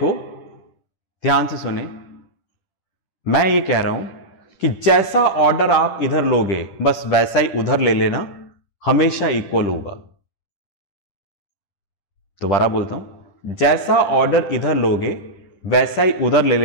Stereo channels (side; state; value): right; late; 10 ms